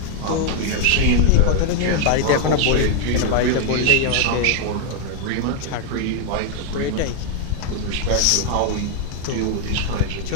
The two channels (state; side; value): different; both; correlation 0.00